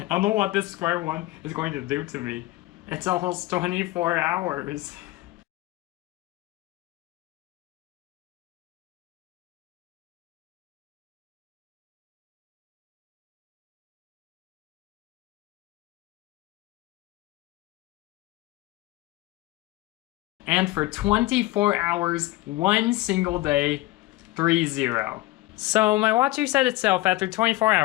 don't know what this Square-1 is going to do to me. It's almost 24 hours. And for 24 hours, one single day, 3-0. So my watch reset itself after 24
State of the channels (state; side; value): quieter; right; 18.4 dB